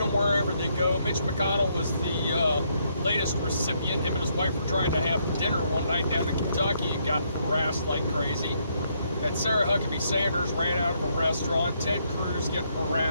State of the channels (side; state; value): both; inverted; correlation -0.73